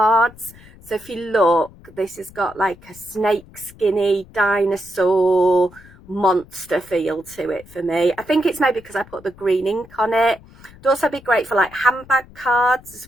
So if you look, this has got like a snake skinny dinosaur monster feel to it for me. I think it's maybe because I put the green ink on it. It'd also be great for like handbag cards as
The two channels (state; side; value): noise; left; rumble, 23 dB below the sound